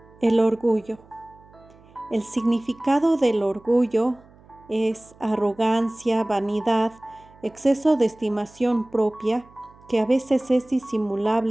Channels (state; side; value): noise; right; hum, 26 dB below the sound